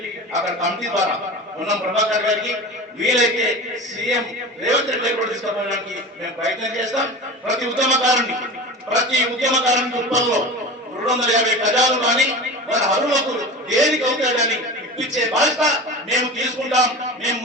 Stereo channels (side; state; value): both; normal; correlation 0.31